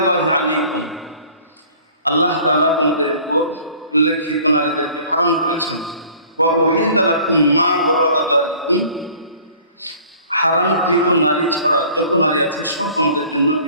আলাইকুম, আল্লাহ তাআলা তোমাদের উপর উল্লেখিত নারীদেরকে হারাম করেছেন। ওয়া উহিল্লা লাকুম মা ওয়ারা'a যালিকুম, হারামকৃত নারী ছাড়া যত নারী আছে সব তোমাদের জন্য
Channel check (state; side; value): inverted; both; correlation -0.51